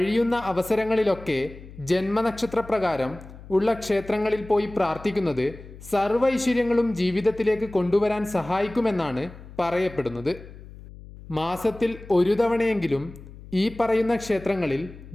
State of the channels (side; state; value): left; noise; hum, 17 dB below the sound